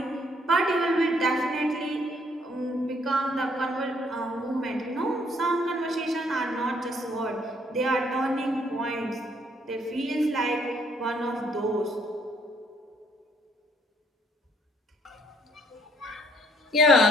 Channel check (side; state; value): both; normal; correlation 0.66